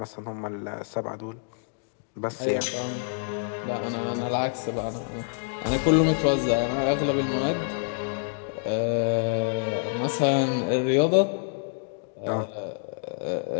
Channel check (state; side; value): silent; right; digital silence